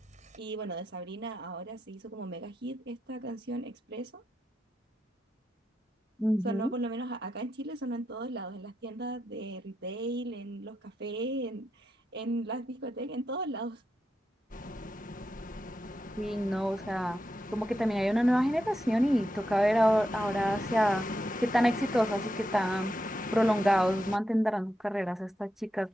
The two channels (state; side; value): normal; both; correlation 0.86